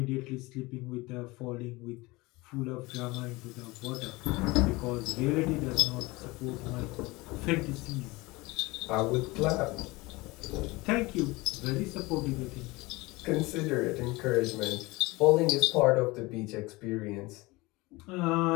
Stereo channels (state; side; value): quieter; right; 22.5 dB